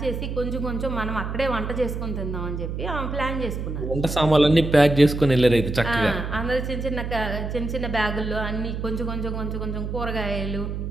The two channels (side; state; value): right; noise; hum, 4 dB below the sound